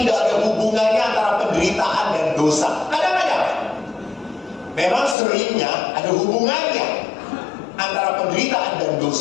ada hubungannya antara penderitaan dan dosa. Kadang-kadang memang seringnya ada hubungannya antara penderitaan dan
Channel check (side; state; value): right; drops out; at 5.2 s